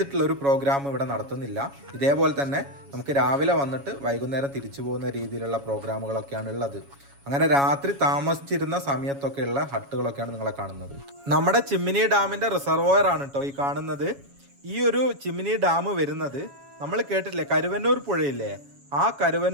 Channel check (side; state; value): left; late; 7.2 ms